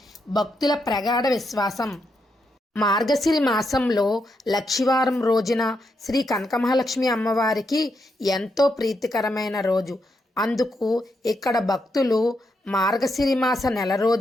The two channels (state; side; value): normal; both; correlation 0.81